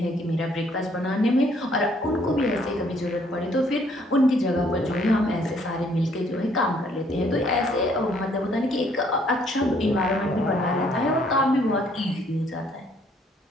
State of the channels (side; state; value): both; normal; correlation 0.65